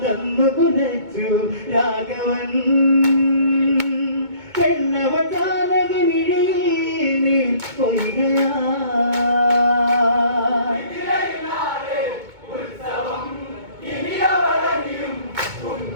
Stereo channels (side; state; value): left; late; 2.2 ms